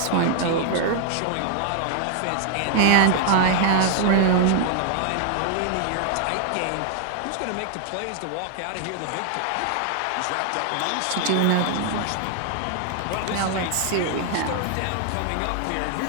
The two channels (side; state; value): both; different; correlation 0.00